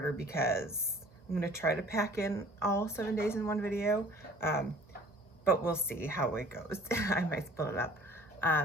because I'm going to try to pack in all 7 days in one video, but we'll see how it goes. I might split it up.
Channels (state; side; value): normal; both; correlation 0.50